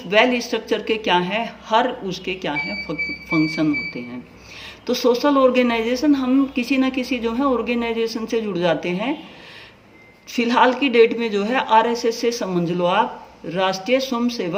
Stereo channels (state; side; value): identical; both; correlation 1.00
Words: वेल स्ट्रक्चर के क्या है हर उसके क्या है फंक्शन होते हैं। तो सोशल ऑर्गेनाइजेशन हम किसी न किसी जो है ऑर्गेनाइजेशन से जुड़ जाते हैं। फिलहाल की डेट में जो है आरएसएस से समझ लो आप, राष्ट्रीय